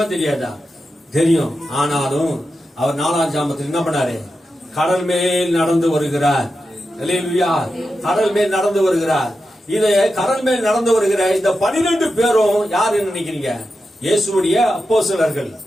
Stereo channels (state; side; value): normal; both; correlation 0.90